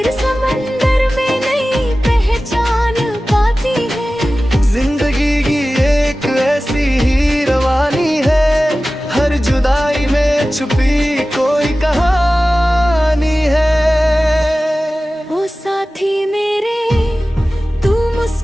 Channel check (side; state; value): both; normal; correlation 0.96